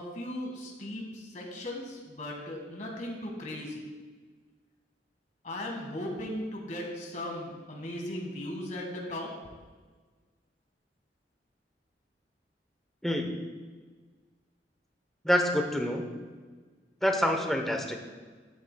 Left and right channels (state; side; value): normal; both; correlation 0.73